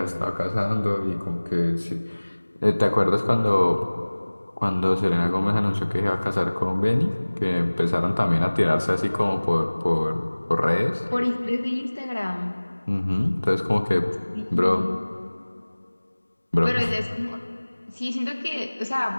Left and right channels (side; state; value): both; inverted; correlation -1.00